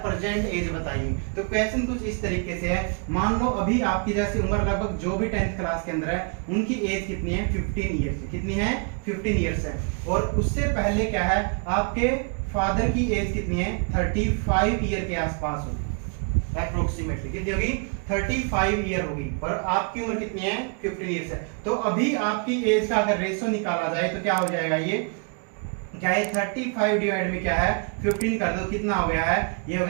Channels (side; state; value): left; quieter; 38.1 dB